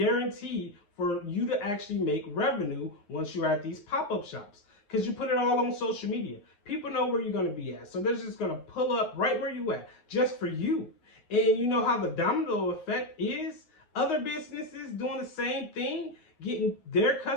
for you to actually make revenue once you're at these pop-up shops, because you put it all on social media. People know where you're going to be at, so they're just going to pull up right where you at just for you. And you know how the domino effect is? Other businesses doing the same thing, getting their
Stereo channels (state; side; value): late; right; 9.6 ms